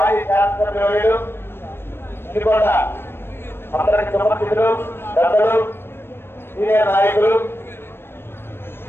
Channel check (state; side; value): late; right; 0.11 ms